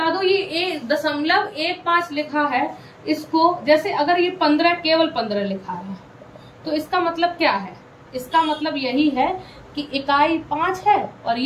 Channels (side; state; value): both; identical; correlation 1.00